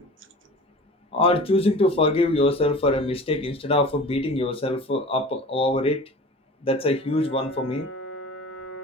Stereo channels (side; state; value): both; normal; correlation 0.39